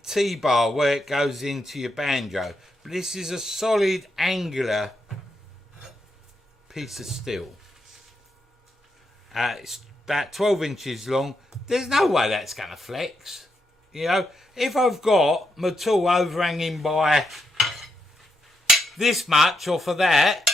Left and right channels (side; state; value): both; normal; correlation 0.81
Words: T-bar where it goes into your banjo. But this is a solid angular piece of steel. It's about 12 inches long. There's no way that's going to flex. You know, if I've got my tool overhanging by this much off of that